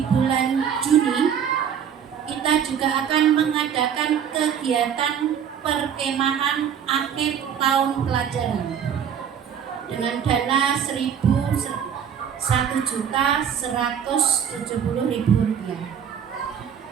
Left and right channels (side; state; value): left; quieter; 8.2 dB